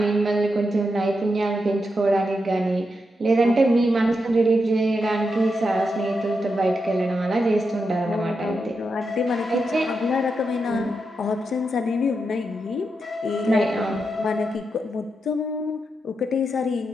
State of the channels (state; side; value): normal; both; correlation 0.85